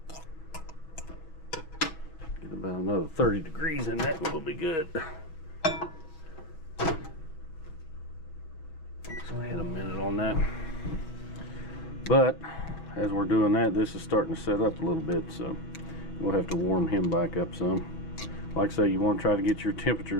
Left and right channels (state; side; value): late; right; 6.3 ms